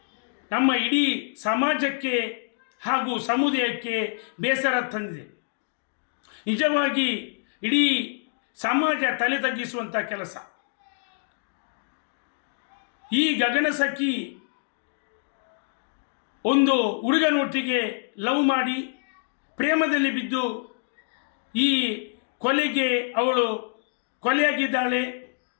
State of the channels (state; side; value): silent; right; digital silence